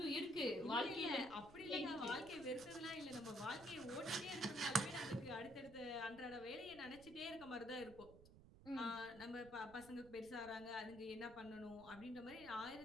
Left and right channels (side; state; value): right; noise; rumble, 19 dB below the sound